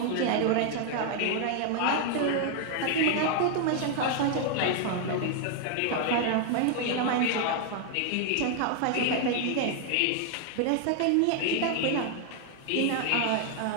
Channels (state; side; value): different; both; correlation 0.00